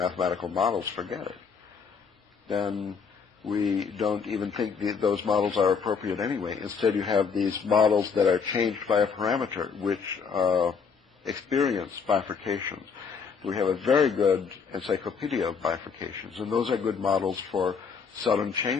models, forget it. Then we don't even think those models are appropriate anyway. Instead, you have these models that are changed by a parameter, which experience bifurcations. We have a very good encyclopedia of bifurcations, and those are good models for sudden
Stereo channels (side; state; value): right; quieter; 5.8 dB